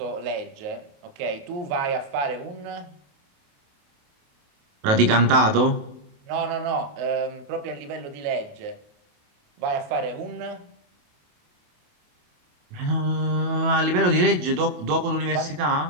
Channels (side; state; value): left; late; 28 ms